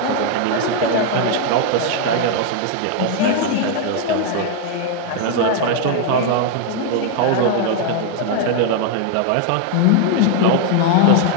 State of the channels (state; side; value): different; both; correlation 0.00